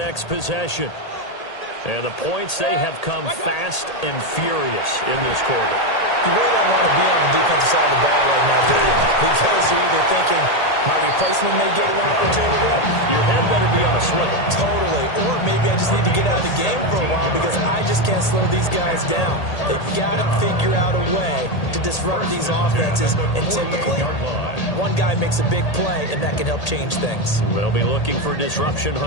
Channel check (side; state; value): right; late; 1.8 ms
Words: possession. And the points, they have come fast and furious in this quarter. You really don't want to be on the defensive side of the ball right now, do you? Because you're either thinking, my replacement may get an opportunity. Your head better be on a swivel. Totally. Or maybe I just need to get out of the game for a while because I just can't slow these guys down. They've got to figure out a way to disrupt these offenses. And typically, one guy makes a big play, and that can help change things. They'll be looking for disruption